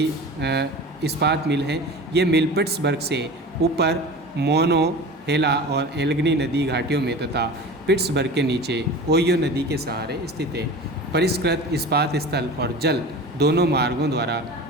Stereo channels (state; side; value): normal; both; correlation 0.35